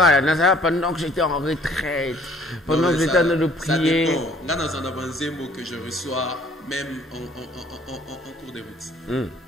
que j'étais en retraite, pendant que j'étais en train de prier. Ça dépend. Là, dans un avancé mot que je reçois, même en cours de route.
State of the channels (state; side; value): normal; both; correlation 0.57